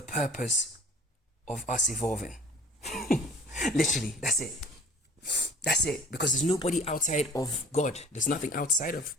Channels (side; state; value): both; normal; correlation 0.47